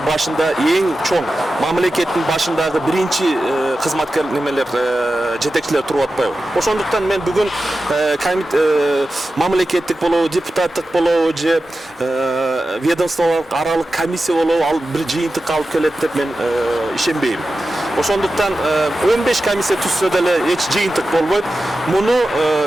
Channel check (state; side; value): normal; both; correlation 0.93